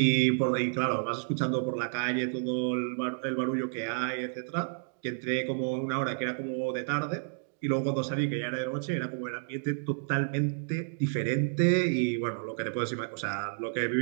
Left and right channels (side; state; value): left; silent; digital silence